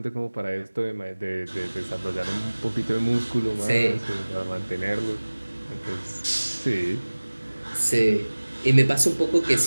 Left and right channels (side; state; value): both; inverted; correlation -1.00